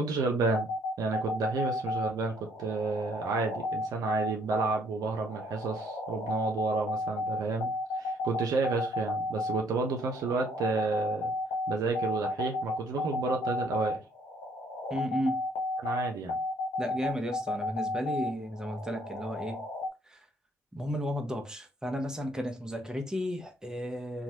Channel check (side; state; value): both; normal; correlation 0.64